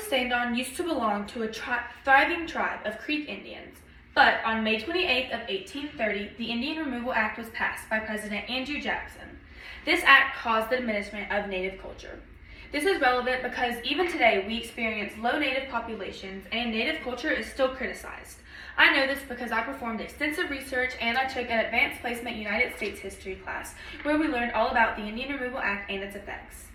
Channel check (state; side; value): identical; both; correlation 1.00